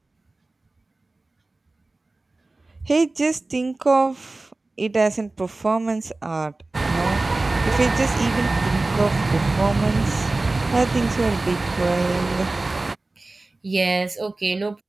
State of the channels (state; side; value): quieter; left; 3.1 dB